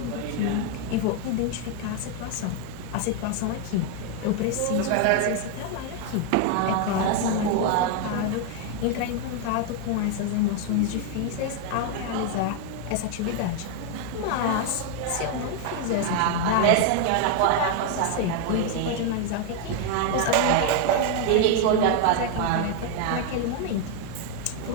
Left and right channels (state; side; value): different; both; correlation 0.01